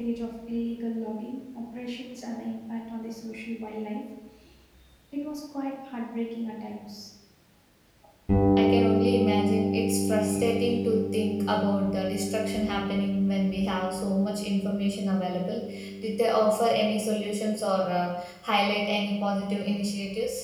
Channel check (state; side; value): identical; both; correlation 1.00